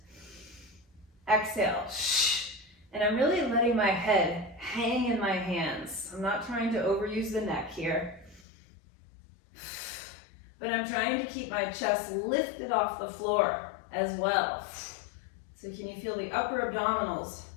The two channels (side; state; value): right; drops out; at 8.5 s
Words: exhale. And I'm really letting my head hang in my hands. I'm not trying to overuse the neck here, but I'm trying to keep my chest lifted off the floor as well. So can you feel the upper abdominals